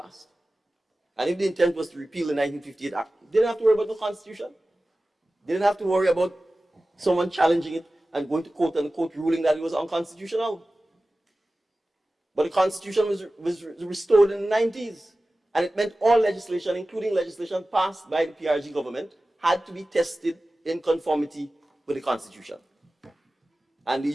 and if the intent was to repeal the 1958 Act, they didn't have to worry about the Constitution. They didn't have to worry about someone challenging it and going to court and the court ruling that it was unconstitutional. But the Constitution was restored in the 90s. And it meant all legislation, including legislation passed by the PRG government, had to be tested in conformity with the Constitution. And the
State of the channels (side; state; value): both; normal; correlation 0.96